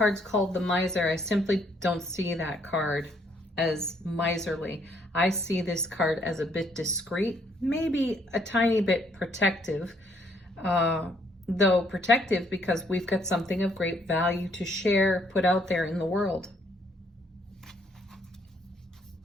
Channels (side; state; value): both; normal; correlation 0.68